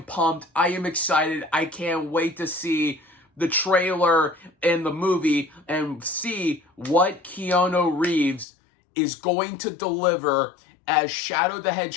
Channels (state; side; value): drops out; right; at 8.5 s